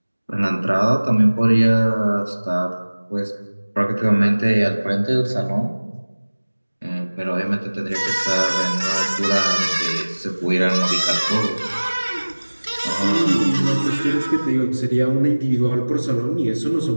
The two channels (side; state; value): both; inverted; correlation -1.00